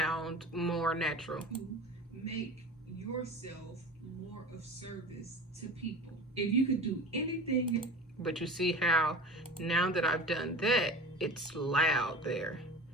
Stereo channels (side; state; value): both; normal; correlation 0.35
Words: more natural. you make yourself more of service to people. If you could do anything, But you see how now that I've done that, it's loud there.